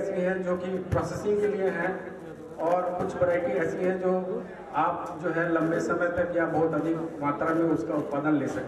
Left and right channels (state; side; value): identical; both; correlation 1.00